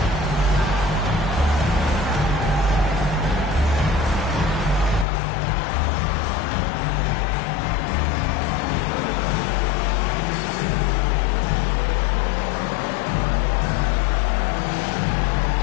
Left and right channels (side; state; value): right; drops out; at 5.1 s